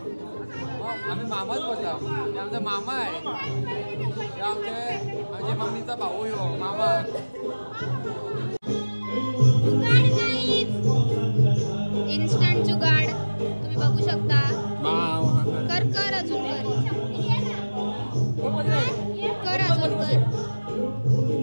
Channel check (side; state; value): both; inverted; correlation -1.00